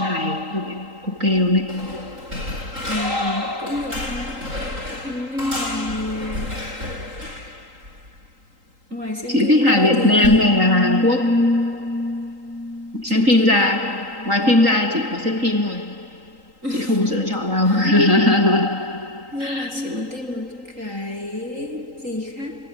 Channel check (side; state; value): left; late; 3.8 ms